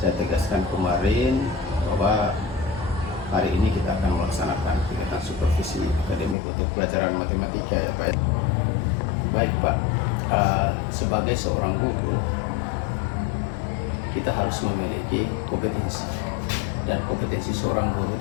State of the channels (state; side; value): drops out; right; at 6.4 s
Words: tegaskan kemarin bahwa hari ini kita akan melaksanakan kegiatan supervisi akademik untuk pelajaran matematika ya Pak. Baik Pak, sebagai seorang guru kita harus memiliki kompetensi, dan kompetensi seorang guru